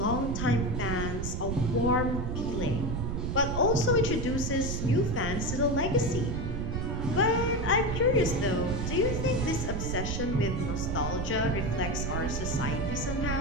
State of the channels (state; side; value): noise; right; rumble, 2 dB below the sound